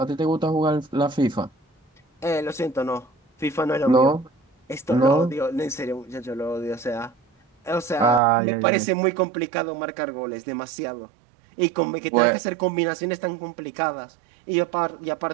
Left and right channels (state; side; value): drops out; left; at 8.2 s